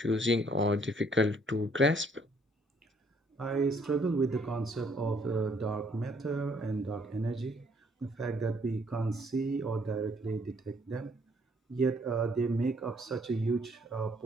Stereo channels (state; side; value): normal; both; correlation 0.65